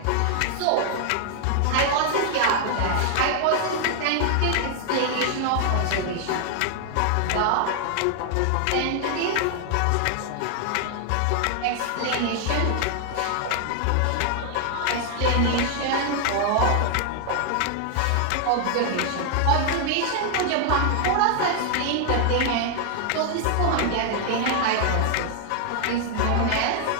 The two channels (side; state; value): both; different; correlation 0.00